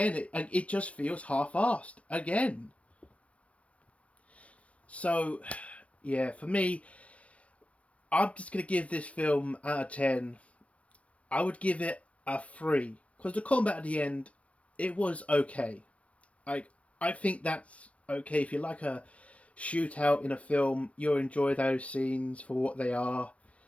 it just feels half-assed again. So, yeah, for me, I'm just going to give this film out of 10. I would give it a 3. Because the combat at the end, it was okay. I think that's okay. If you like a shootout in a film, you'll enjoy those scenes for what they are.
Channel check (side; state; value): right; late; 0.064 ms